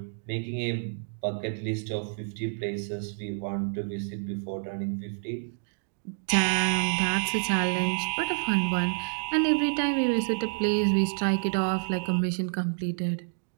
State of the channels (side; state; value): left; silent; digital silence